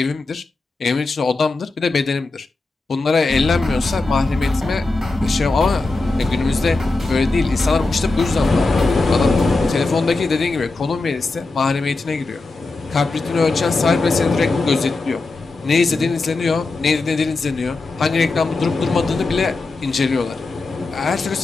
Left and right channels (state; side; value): quieter; right; 3.4 dB